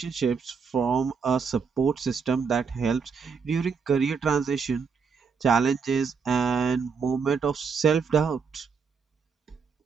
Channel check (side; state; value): left; quieter; 5.7 dB